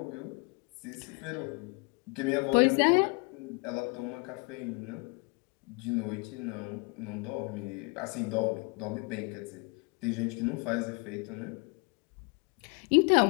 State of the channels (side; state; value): right; quieter; 31.5 dB